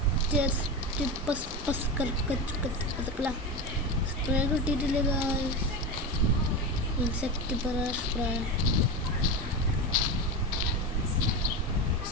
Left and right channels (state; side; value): normal; both; correlation 0.21